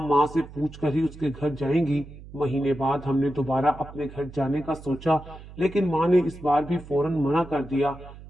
माँ से पूछ कर ही उसके घर जाएंगी। महीने बाद हमने दोबारा अपने घर जाने का सोचा, लेकिन माँ ने इस बार भी फौरन मना कर दिया।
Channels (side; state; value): right; noise; hum, 17 dB below the sound